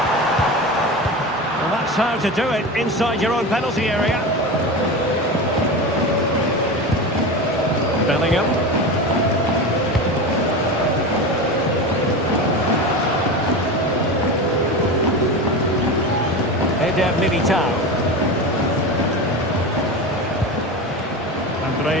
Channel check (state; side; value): normal; both; correlation 0.25